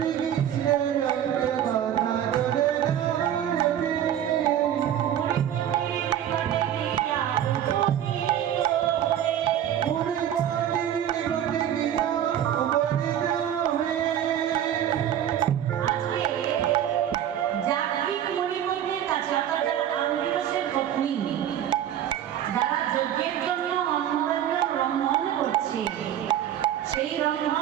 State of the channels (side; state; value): left; quieter; 10.6 dB